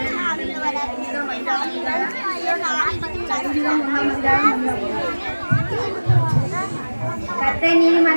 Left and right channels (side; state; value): both; inverted; correlation -1.00